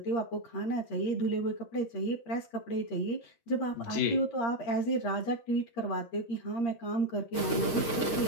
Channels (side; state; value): right; late; 13 ms